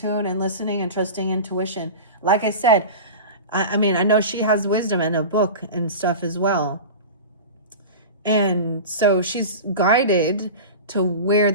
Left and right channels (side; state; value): both; inverted; correlation -0.31